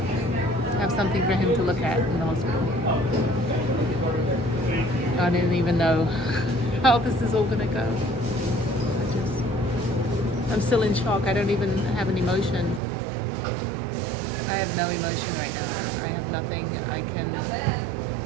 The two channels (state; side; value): drops out; left; at 12.8 s